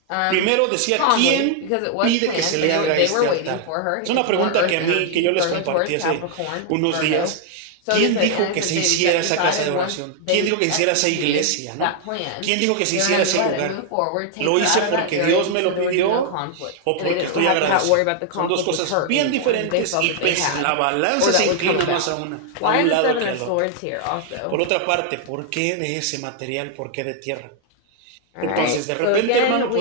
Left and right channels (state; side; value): different; both; correlation 0.00